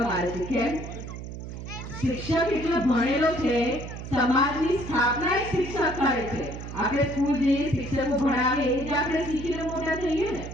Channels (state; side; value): noise; right; hum, 9 dB below the sound